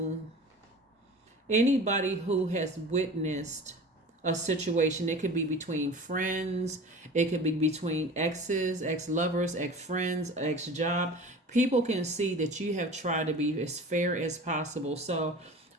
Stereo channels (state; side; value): normal; both; correlation 0.38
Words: has witnessed a situation, it could be between friends, it could be between exes, ex-lovers, ex-friends, ex-job. People can see that you have tried to be as fair as possible. So